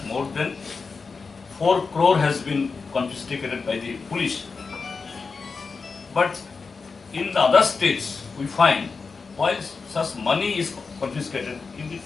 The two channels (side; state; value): right; quieter; 4.7 dB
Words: more than 4 crore has been confiscated by the police. But in the other states, we find while such money is confiscated,